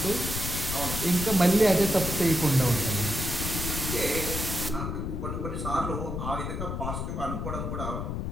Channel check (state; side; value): noise; left; rumble, 4 dB below the sound